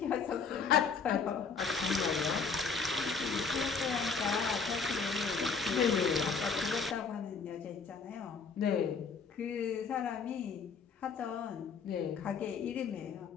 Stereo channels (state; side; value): quieter; right; 5.3 dB